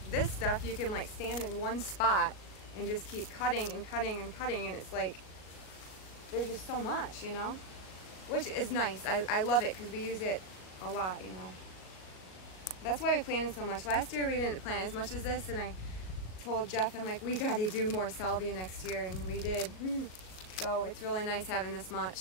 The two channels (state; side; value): late; right; 38 ms